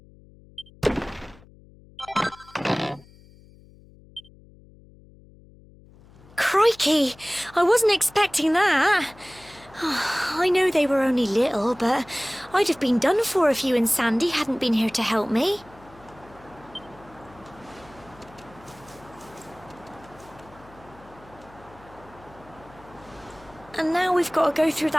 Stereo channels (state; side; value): noise; left; hum, 24 dB below the sound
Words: Crikey! I wasn't expecting that. I know they were only little, but I'd have been done for if you and Sandy hadn't been here to help me. And now we've got to go through